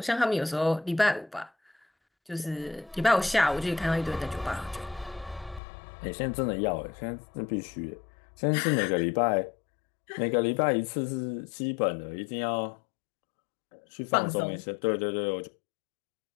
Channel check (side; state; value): right; drops out; at 5.6 s